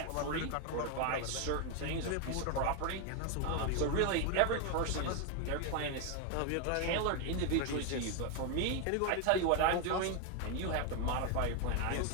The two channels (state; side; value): different; both; correlation 0.01